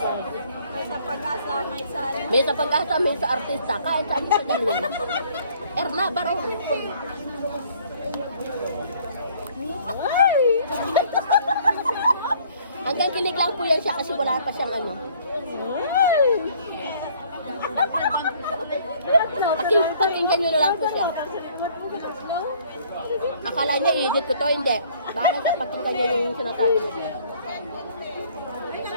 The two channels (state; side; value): inverted; both; correlation -0.59